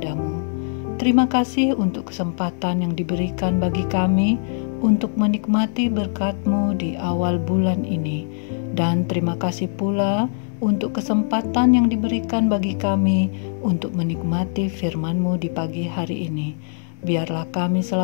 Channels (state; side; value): silent; right; 59 dB below the other